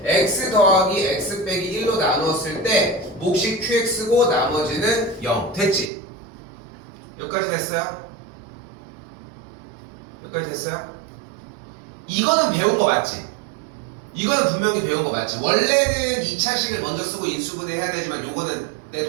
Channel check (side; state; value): left; drops out; at 5.9 s